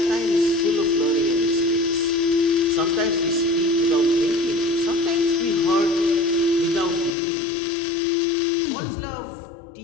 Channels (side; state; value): right; drops out; at 7.2 s